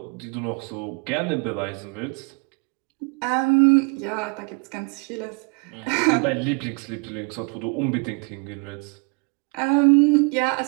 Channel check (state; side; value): quieter; left; 32.7 dB